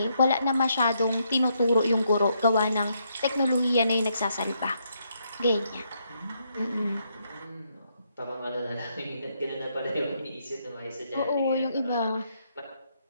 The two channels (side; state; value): both; inverted; correlation -0.76